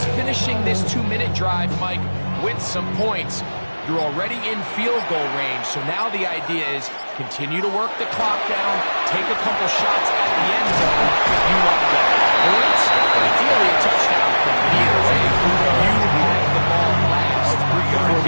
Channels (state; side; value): inverted; both; correlation -1.00